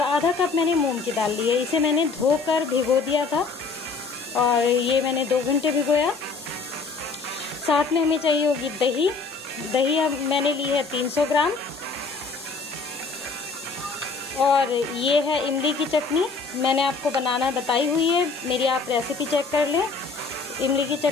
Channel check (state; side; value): quieter; right; 4.5 dB